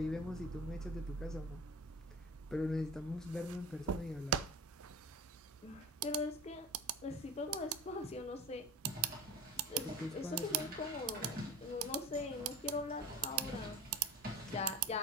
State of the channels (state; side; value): normal; both; correlation 0.35